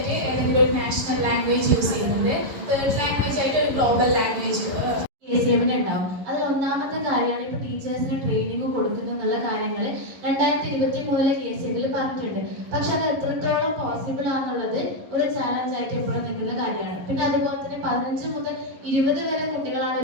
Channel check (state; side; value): late; left; 11 ms